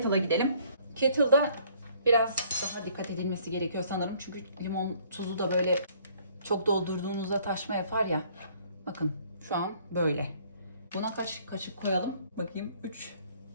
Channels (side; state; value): both; inverted; correlation -0.60